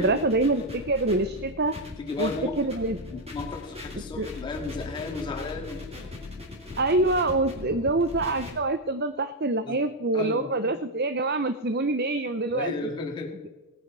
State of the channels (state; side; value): normal; both; correlation 0.03